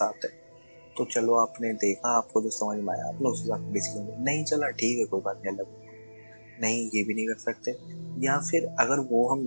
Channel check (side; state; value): both; inverted; correlation -1.00